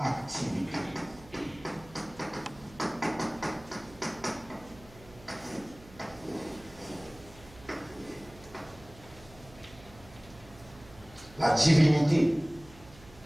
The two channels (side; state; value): right; noise; hum, 21 dB below the sound